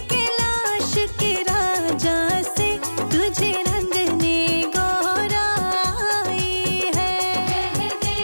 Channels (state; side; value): inverted; both; correlation -1.00